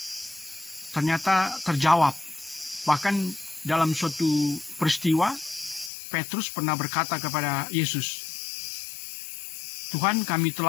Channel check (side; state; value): right; drops out; at 5.9 s